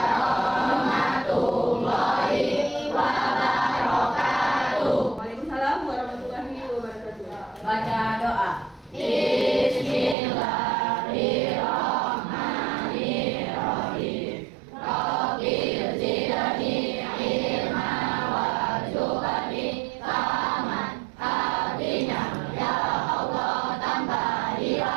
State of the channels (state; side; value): drops out; left; at 10.2 s